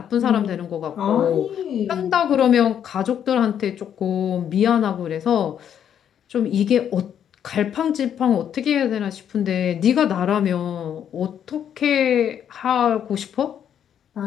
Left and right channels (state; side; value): quieter; right; 9.1 dB